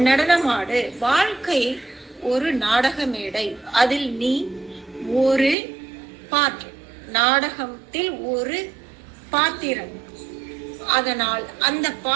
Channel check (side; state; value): left; drops out; at 5.6 s